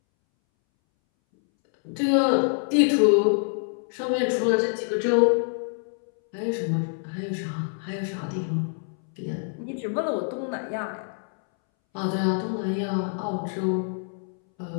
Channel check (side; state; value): right; silent; 61 dB below the other